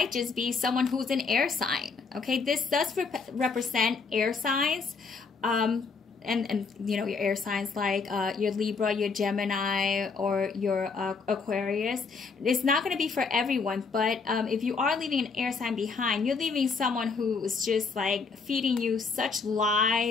just be someone who's an air sign, okay? This does represent air signs. And you know, your air signs like your Libra, your Gemini, or your Aquarius. It's not going to be for everyone, but if you are leaving an air sign behind, you're leaving someone who is just like feeding you such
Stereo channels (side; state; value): right; quieter; 4.8 dB